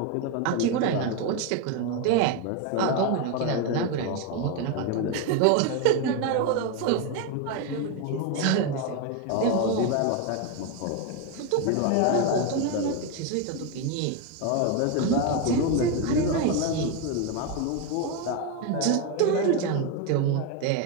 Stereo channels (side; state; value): both; different; correlation 0.02